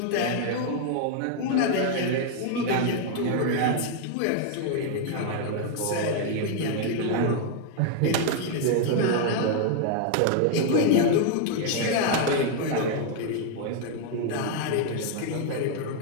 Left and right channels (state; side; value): different; both; correlation 0.00